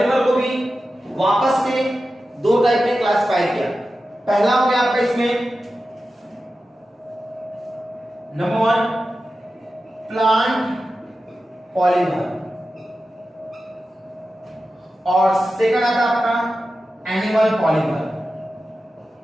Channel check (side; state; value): both; normal; correlation 0.93